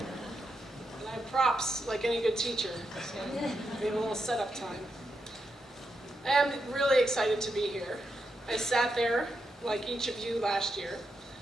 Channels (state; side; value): normal; both; correlation 0.84